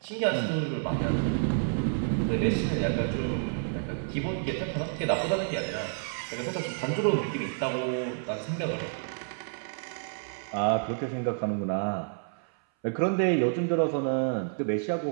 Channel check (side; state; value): left; silent; 58 dB below the other